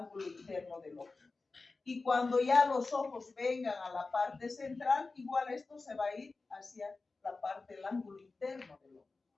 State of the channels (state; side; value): quieter; right; 3.8 dB